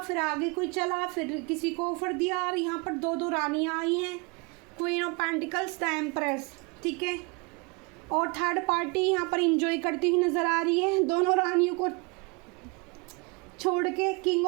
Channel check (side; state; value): left; quieter; 29.7 dB